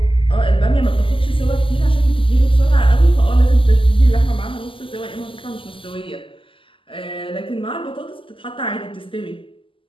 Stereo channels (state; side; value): late; right; 0.25 ms